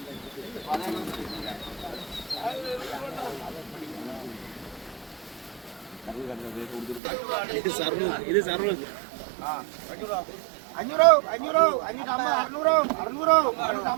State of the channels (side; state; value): left; drops out; at 7.0 s